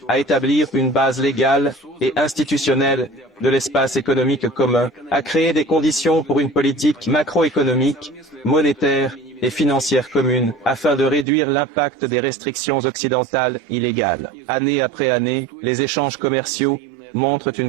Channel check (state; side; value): drops out; left; at 11.2 s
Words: à établir une base légale et institutionnelle de l'espace économique commun, à créer des conditions pour une politique macroéconomique, monétaire et financière commune afin de réduire l'impact des restrictions occidentales illégales. Année après année, les échanges commerciaux montrent